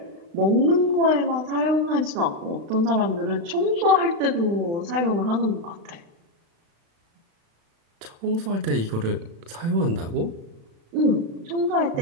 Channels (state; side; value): late; left; 36 ms